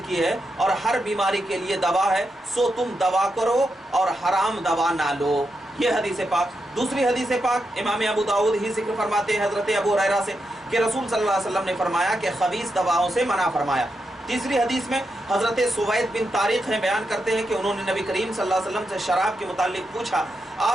की है और हर बीमारी के लिए दवा है, सो तुम दवा करो और हराम दवा ना लो। ये हदीस पाक। दूसरी हदीस पाक इमाम अबू दाऊद ही जिक्र फरमाते हैं हज़रत अबू हुरैरा से कि रसूल सल्लल्लाहु अलैहि वसल्लम ने फरमाया कि खबीस दवाओं से मना फरमाया। तीसरी हदीस में हज़रत सुवैद बिन तारिक हैं बयान करते हैं कि उन्होंने नबी करीम सल्लल्लाहु अलैहि वसल्लम से शराब के मुतालिक पूछा,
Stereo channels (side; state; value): both; normal; correlation 0.86